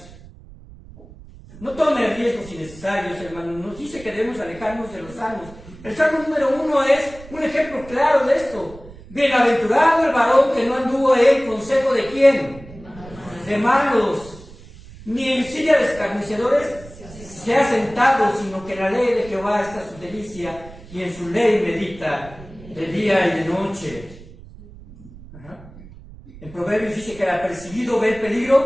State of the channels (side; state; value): right; noise; rumble, 19 dB below the sound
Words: No tome riesgos innecesarios, hermanos. Nos dice que debemos alejarnos de los salmos. El salmo número 1 es un ejemplo claro de esto. Bienaventurado el varón que no anduvo en consejo de ¿quién? De malos, ni en silla de escarnecedores se ha sentado, sino que en la ley de Jehová está su delicia, y en su ley medita de día y de noche. Ajá. En Proverbios dice que el apercibido ve el